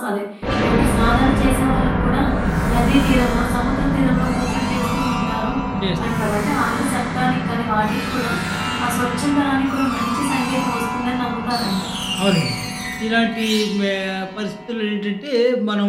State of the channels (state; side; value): identical; both; correlation 1.00